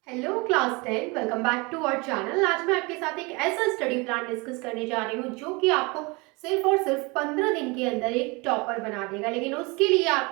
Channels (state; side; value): quieter; left; 27.0 dB